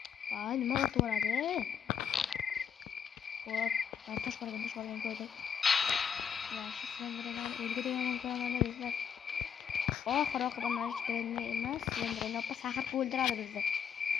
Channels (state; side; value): quieter; right; 7.6 dB